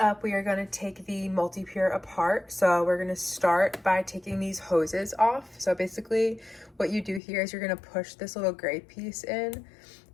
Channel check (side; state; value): right; drops out; at 7.2 s